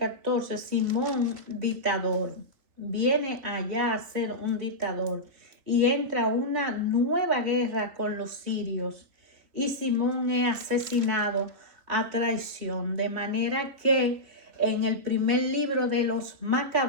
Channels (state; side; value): late; left; 3.1 ms